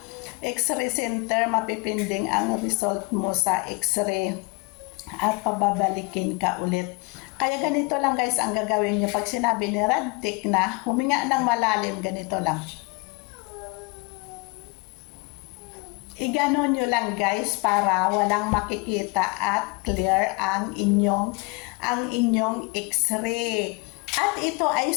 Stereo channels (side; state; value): right; quieter; 29.3 dB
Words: x-ray center, mapipinding ang result mo sa x-ray at pababalikin ka ulit. Kaya ganito lang guys ang gagawin nyo pag sinabi ni radtech na huminga ng malalim, ganito lang. Iganon nyo lang guys para walang makikita at clear ang inyong x-ray. At ito ay